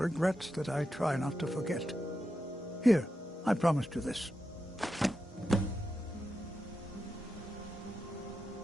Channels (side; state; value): both; normal; correlation 0.88